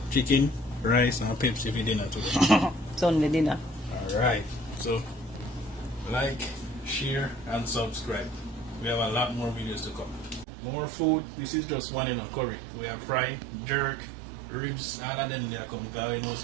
rice and Pepsi for dinner today. Sunday dinner. Alright, so like, share and subscribe. We have a lot more videos to come. More food. This is just one in a curry. We have fry, jerk, ribs, all of them they are come because we know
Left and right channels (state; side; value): drops out; left; at 10.5 s